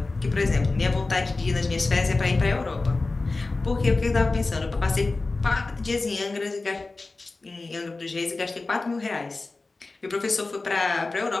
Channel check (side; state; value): right; quieter; 3.5 dB